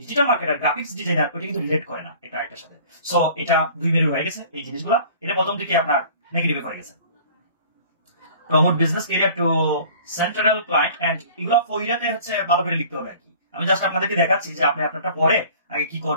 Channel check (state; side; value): inverted; both; correlation -0.48